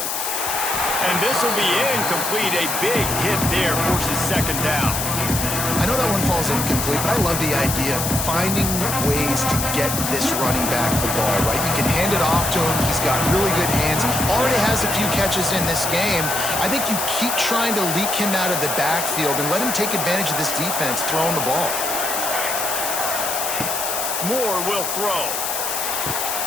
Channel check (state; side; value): noise; left; hiss, 2 dB below the sound